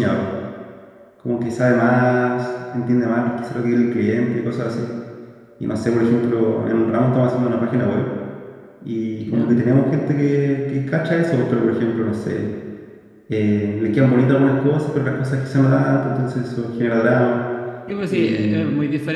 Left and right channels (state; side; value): identical; both; correlation 1.00